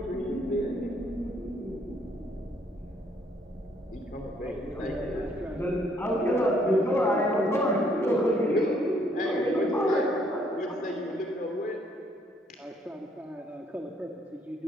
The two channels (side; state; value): both; normal; correlation 0.67